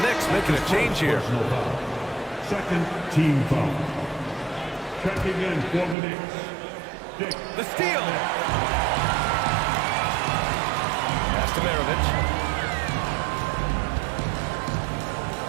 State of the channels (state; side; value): drops out; left; at 6.0 s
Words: Knicks making a change here. Second team foul. Checking in for the Knicks. The steal. Pass to Maravich.